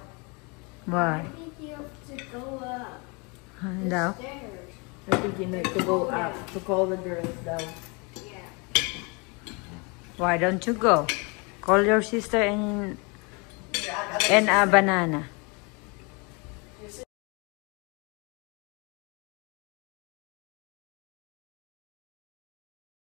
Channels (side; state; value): right; quieter; 30.5 dB